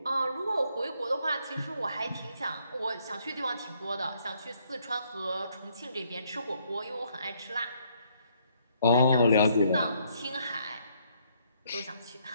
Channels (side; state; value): both; inverted; correlation -0.69